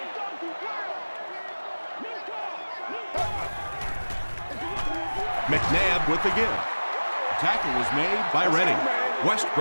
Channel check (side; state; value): both; inverted; correlation -1.00